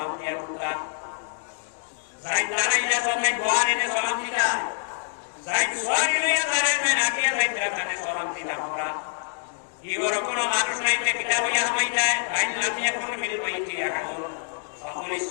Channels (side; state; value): right; silent; digital silence